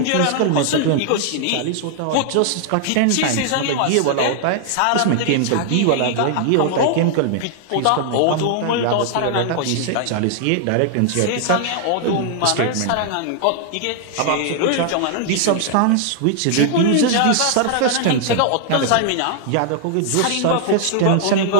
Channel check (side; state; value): both; different; correlation 0.00